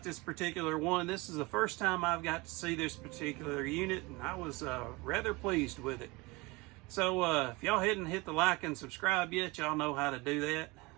this particular one. This is the first time I've got to see this particular unit, and I was rather pleased with it. So if y'all hadn't hit the like and subscribe yet, y'all know how to do that.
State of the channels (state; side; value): quieter; left; 23.9 dB